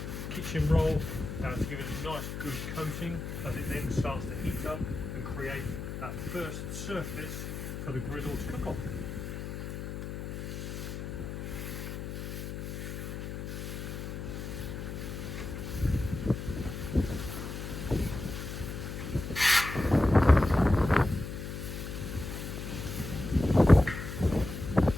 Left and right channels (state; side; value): noise; left; hum, 6 dB below the sound